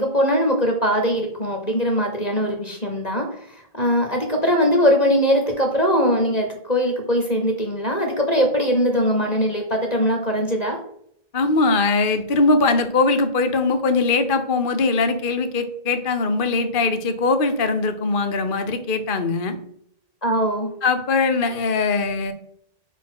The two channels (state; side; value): late; right; 1.9 ms